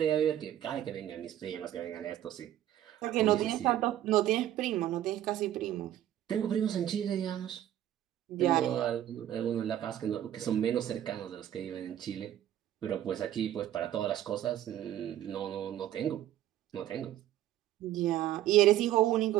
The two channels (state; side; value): quieter; left; 12.1 dB